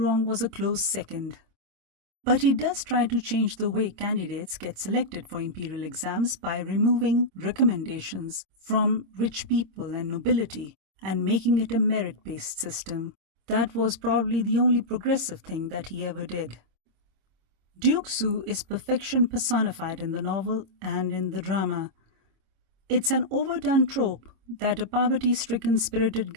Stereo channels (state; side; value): late; left; 26 ms